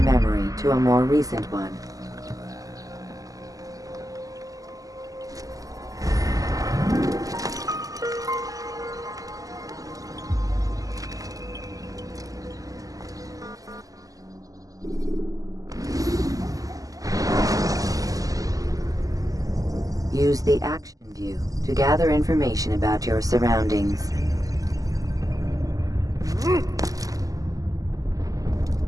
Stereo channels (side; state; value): left; late; 0.17 ms